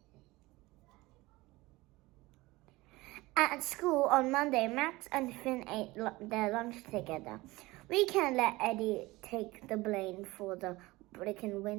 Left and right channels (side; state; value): left; quieter; 20.6 dB